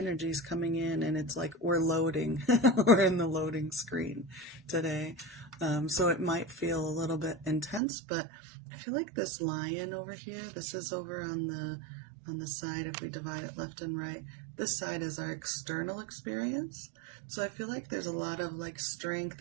is coming in, and it's like we're loading. We're in the loading screen today. So it might feel a little bit intense, but I feel like this lion over here, this is over on the side, if we divide it left and right, this side is our external experience. So I feel like there's a lot of like strength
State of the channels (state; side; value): drops out; left; at 7.8 s